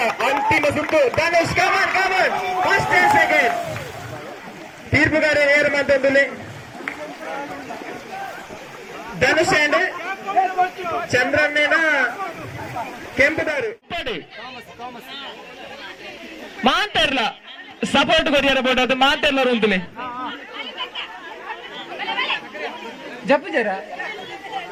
ಅಂತಿಮ ಸುತ್ತು. Dhanush come on first and second. ತೀರ್ಪುಗಾರ ನೇರ ಮಾತೊಂದು ಧನುಷ್ ಅಂಡ್ ಚಂದ್ರಣ್ಣನ ಕೆಂಪುದಾರು ಮಾಂತರ್ಲ ಸಪೋರ್ಟ್ ಕೊರಿಯರ ಬೋಟ್ ಅದು ಮಾಂತರ್ಲ ಉಂಟುಲೆ ಜಪ್ಪು ಜರ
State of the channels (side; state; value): both; identical; correlation 1.00